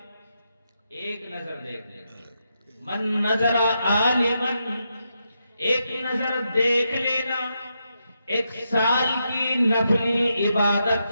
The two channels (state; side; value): inverted; both; correlation -0.83